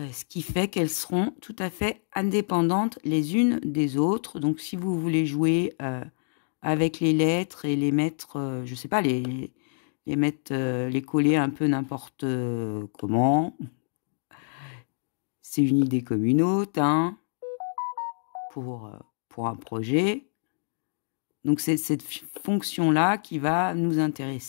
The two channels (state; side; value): silent; right; digital silence